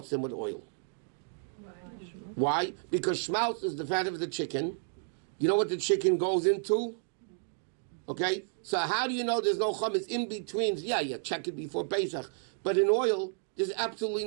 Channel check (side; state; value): left; silent; digital silence